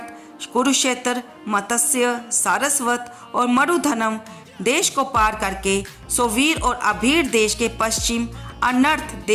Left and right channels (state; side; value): identical; both; correlation 1.00